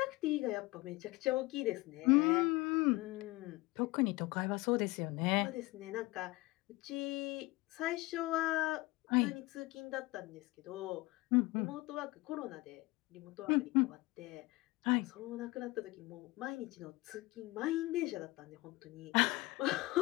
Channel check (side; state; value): right; quieter; 21.4 dB